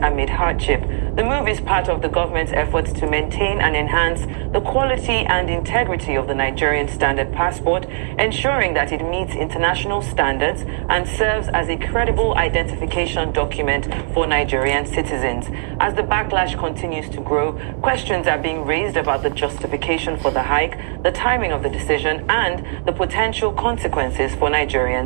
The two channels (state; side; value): silent; left; 66 dB below the other